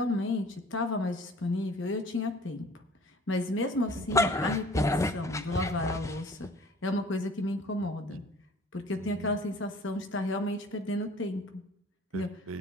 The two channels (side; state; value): both; normal; correlation 0.50